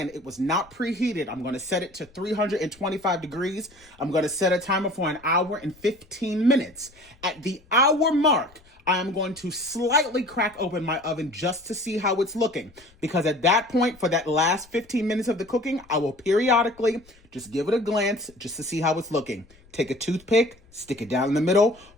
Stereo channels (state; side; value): noise; left; rumble, 28 dB below the sound